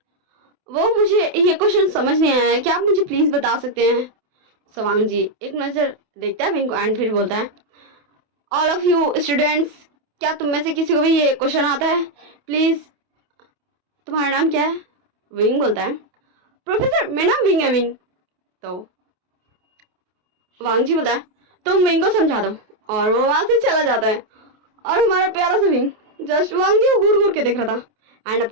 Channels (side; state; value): left; late; 28 ms